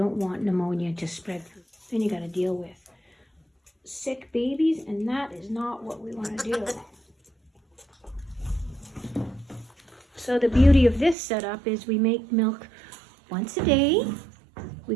want pneumonia to spread through. Then you got to deal with sick babies, and that is not what we want to do. So the beauty of this setup is we make milk once a day. We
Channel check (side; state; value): left; drops out; at 11.2 s